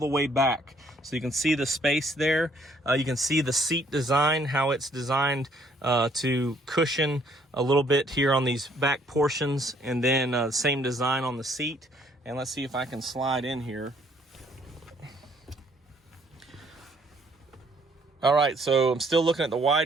way back. So you can see the space there. You can see the seat design, how it's designed to cushion a little bit here on these back portions, and then same design on the seat. And let's see if I can slide in here. All right, so I'm still looking at the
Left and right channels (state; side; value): normal; both; correlation 0.64